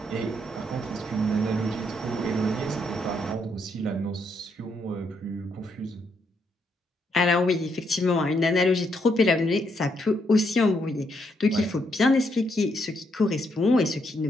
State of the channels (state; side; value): normal; both; correlation 0.76